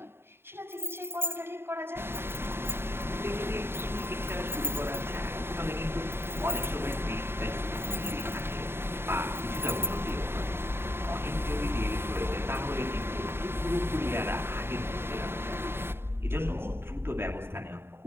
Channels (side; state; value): left; late; 0.11 ms